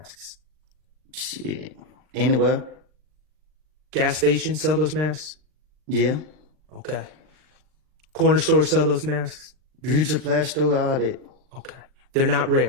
Shit. Anywhere. Gas stations sell those masks? Yeah. Okay. Corner stores sell those masks? Beauty supply store, all that. Okay. They're not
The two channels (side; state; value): left; late; 39 ms